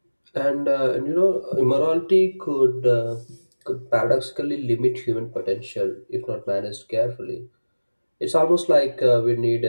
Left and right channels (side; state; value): both; inverted; correlation -1.00